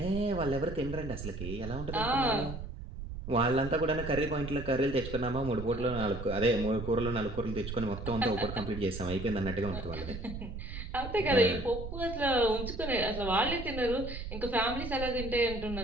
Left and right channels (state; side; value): noise; right; rumble, 8 dB below the sound